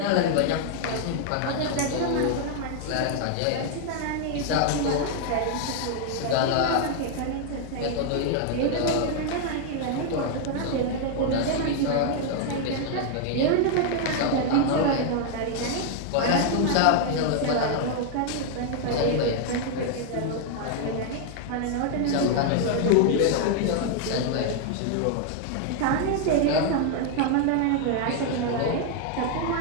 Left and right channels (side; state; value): both; different; correlation 0.00